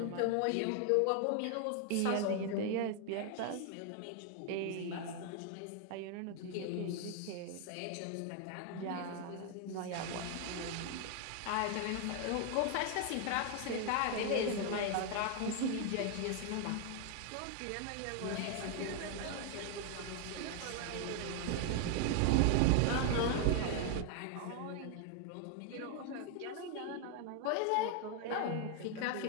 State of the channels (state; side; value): different; both; correlation 0.00